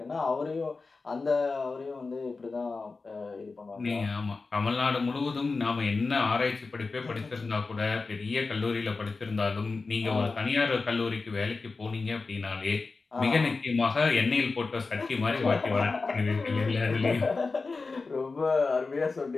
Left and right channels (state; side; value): quieter; right; 4.0 dB